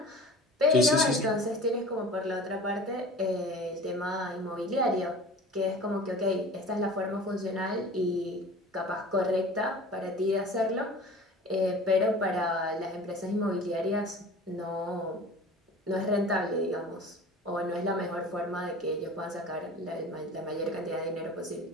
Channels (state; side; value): normal; both; correlation 0.40